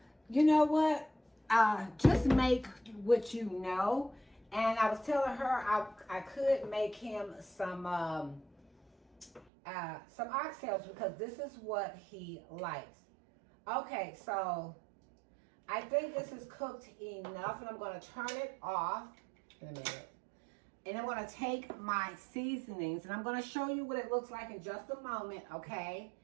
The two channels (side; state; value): left; drops out; at 9.5 s